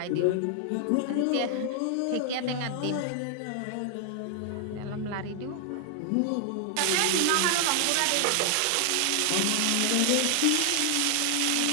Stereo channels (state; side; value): different; both; correlation 0.00